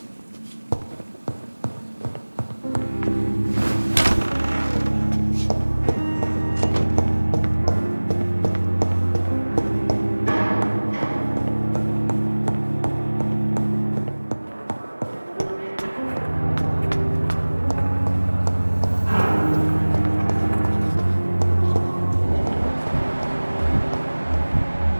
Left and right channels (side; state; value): both; inverted; correlation -1.00